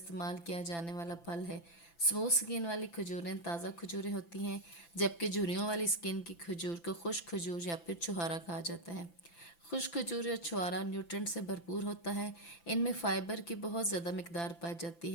کیا جانے والا پھل ہے۔ اسموتھ سکین والی کھجوریں تازہ کھجوریں ہوتی ہیں، جبکہ جھریوں والی سکین کی کھجور کو خشک کھجور یا پھر چھہارا کہا جاتا ہے۔ خشک کھجور یا چھہارا نیوٹرنٹ سے بھرپور ہوتا ہے۔ ان میں فائبر کی بہت زیادہ مقدار پائی جاتی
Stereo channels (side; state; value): right; late; 5.9 ms